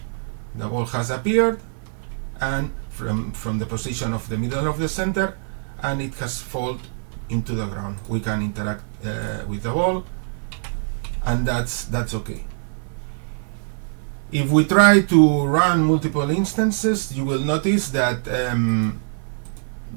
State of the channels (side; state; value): left; silent; 56 dB below the other